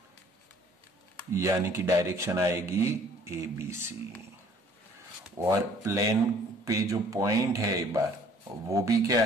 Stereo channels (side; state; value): both; normal; correlation 0.56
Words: यानी कि डायरेक्शन आएगी ABC। और प्लेन पे जो पॉइंट है एक बार वो भी क्या